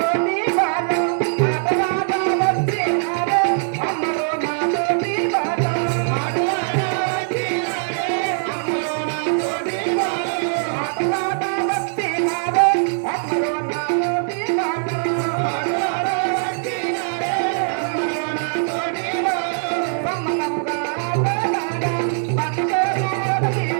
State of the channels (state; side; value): silent; left; 62 dB below the other